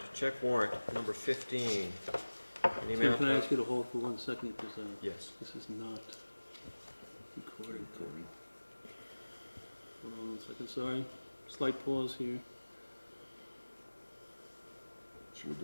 check warrant number 15. In the Tim, amount can I of, ask you to hold for 1 second, because yes. this is not recorded. Hold on 1 second, sorry. Slight pause here. Should we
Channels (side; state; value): both; inverted; correlation -1.00